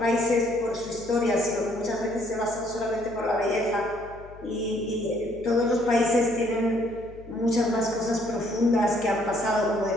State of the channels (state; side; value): noise; left; hum, 19 dB below the sound